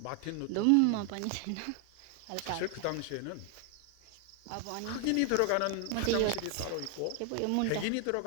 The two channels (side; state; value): both; different; correlation 0.00